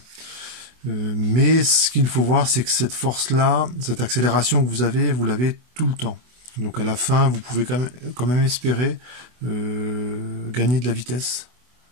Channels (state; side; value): late; left; 24 ms